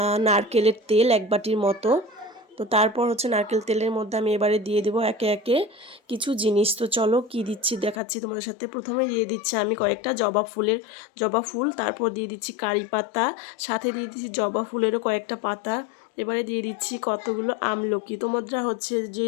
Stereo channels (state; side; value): drops out; right; at 8.0 s